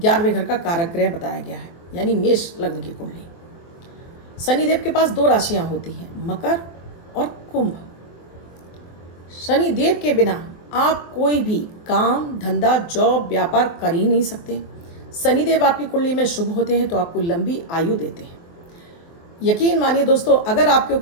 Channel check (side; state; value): right; late; 24 ms